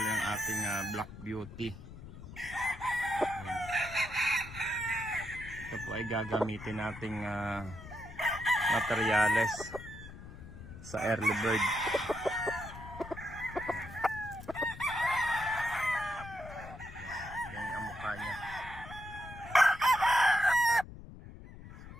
yung ating Black Beauty. Yan. Ito po ay gagamitin nating materyales sa early bird. Yan ang mukha niya. So,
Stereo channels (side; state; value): left; noise; rumble, 14 dB below the sound